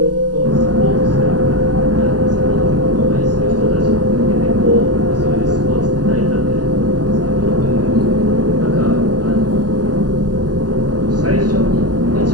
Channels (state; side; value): late; left; 0.68 ms